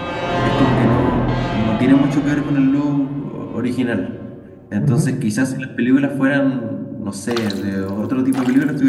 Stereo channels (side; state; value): both; identical; correlation 1.00